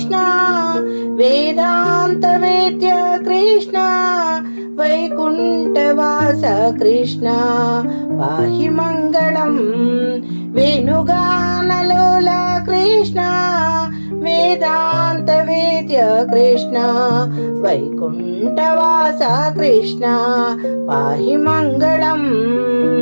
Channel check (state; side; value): inverted; both; correlation -1.00